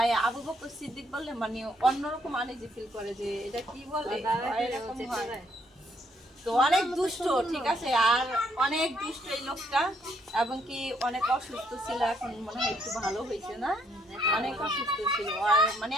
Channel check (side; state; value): both; normal; correlation 0.71